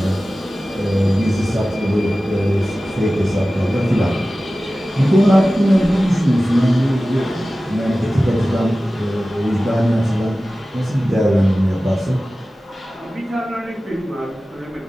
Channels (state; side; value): normal; both; correlation 0.96